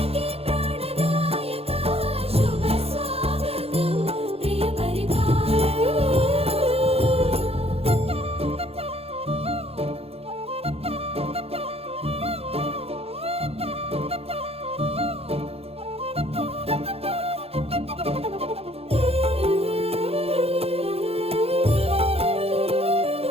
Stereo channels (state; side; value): late; left; 0.29 ms